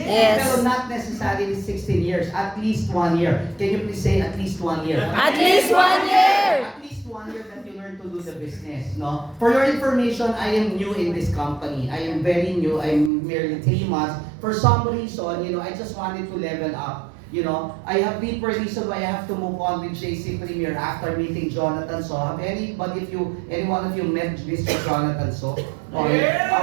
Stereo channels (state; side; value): drops out; left; at 13.1 s